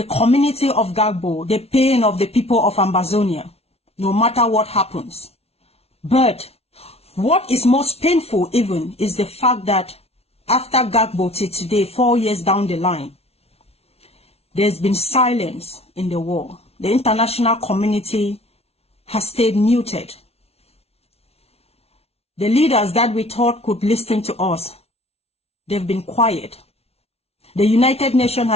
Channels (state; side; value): late; right; 0.30 ms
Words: community of Ngarbuh, the pain of the people of Ambazonia, no matter what happens. But what is most painful even is the fact that after Ngarbuh till today, 4 years down the line, there's been silence in the war. The international community has stayed muted. The leaders that we thought could listen to us, they've been quiet. The United Nations